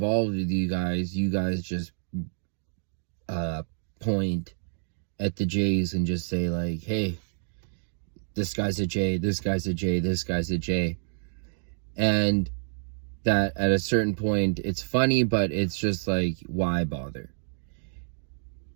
with you guys just point at the J's and just say like, hey, this guy's a J, this guy's a J, this guy's a J. And that at a certain point, it's funny, but it's just like, why bother?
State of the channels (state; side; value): silent; left; digital silence